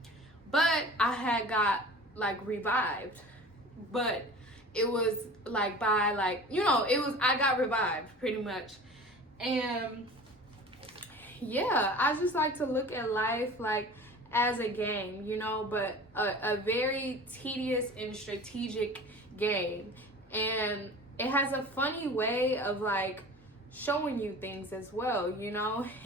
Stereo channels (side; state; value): both; normal; correlation 0.39